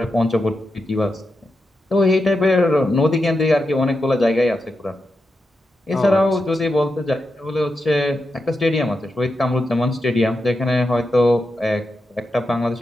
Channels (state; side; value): normal; both; correlation 0.87